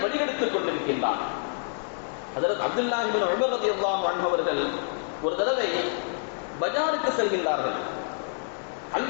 வழிகெடுத்துக் கொண்டிருக்கின்றான். ஹஜ்ரத் அப்துல்லாஹ் இப்னு உமர் ரலியல்லாஹு அன்ஹு அவர்கள் ஒரு தடவை பஜாருக்கு செல்கின்றார்கள்.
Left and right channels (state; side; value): silent; right; digital silence